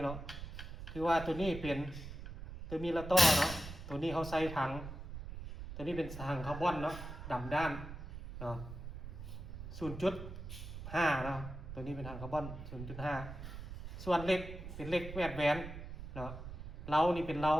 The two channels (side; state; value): right; noise; rumble, 10 dB below the sound